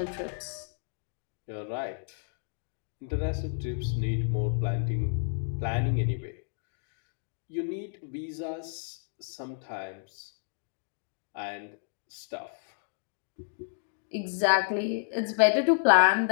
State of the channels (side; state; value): right; silent; digital silence